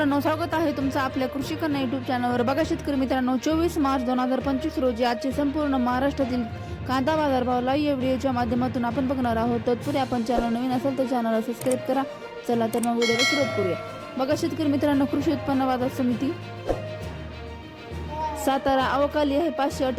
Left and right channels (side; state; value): both; identical; correlation 1.00